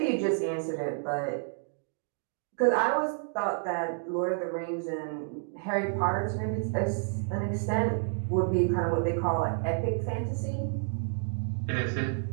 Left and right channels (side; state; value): left; silent; 58 dB below the other